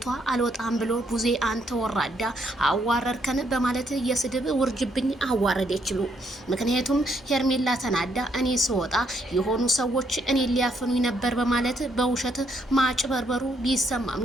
አልወጣም ብሎ ቡዜ አንተ ወራዳ አዋረርከን በማለት የስድብ ውርጅብኝ አዋረደችሉ። ምክንያቱም ሄርሜላ ተናዳ እኔ ስወጣ የሆኑ ሰዎች እኔ ሊያፈኑኝ ነበር በማለት በውሸት ማጭበርበሩ ቢሰማም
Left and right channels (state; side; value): normal; both; correlation 0.73